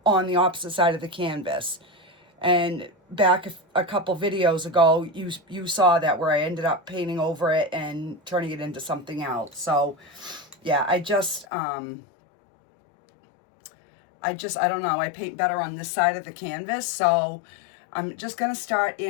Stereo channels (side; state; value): right; drops out; at 11.5 s